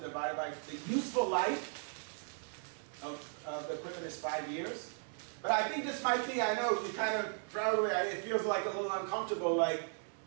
divided by the useful life of the equipment is 5 years. But I think this might be, I know, you kind of probably, it feels like a little uncomfortable, like,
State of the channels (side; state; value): left; silent; 53 dB below the other